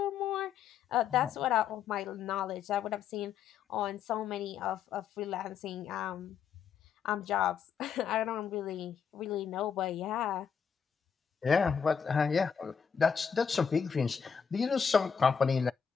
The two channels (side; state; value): right; quieter; 7.0 dB